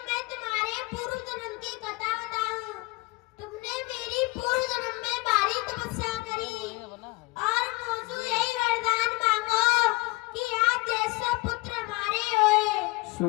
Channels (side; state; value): right; quieter; 24.4 dB